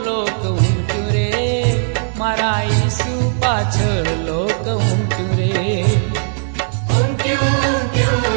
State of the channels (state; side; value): silent; left; 66 dB below the other